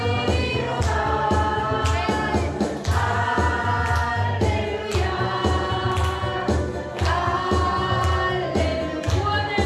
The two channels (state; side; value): identical; both; correlation 1.00